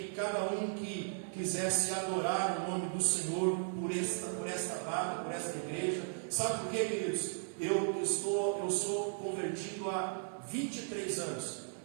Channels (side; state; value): left; silent; 54 dB below the other